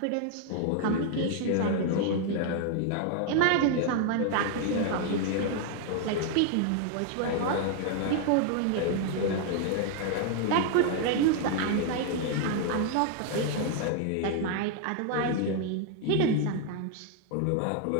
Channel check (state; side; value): different; both; correlation 0.00